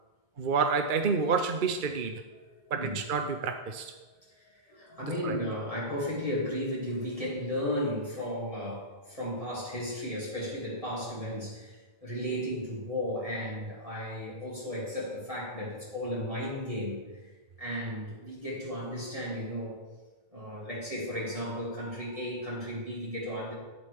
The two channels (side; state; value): left; late; 2.3 ms